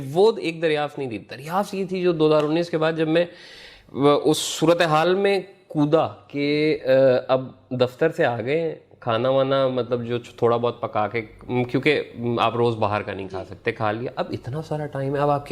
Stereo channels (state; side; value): identical; both; correlation 1.00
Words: एक दरियाफ्त नहीं थी, दरियाफ्त ये थी जो 2019 के बाद जब मैं उस सूरत हाल में कूदा कि अब दफ्तर से आ गए, खाना वाना मतलब जो थोड़ा बहुत पका के, क्योंकि आप रोज बाहर का नहीं खा सकते, खा लिया, अब इतना सारा टाइम है, अब आप